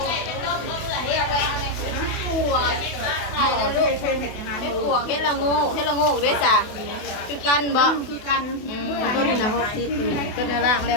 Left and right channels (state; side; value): late; right; 28 ms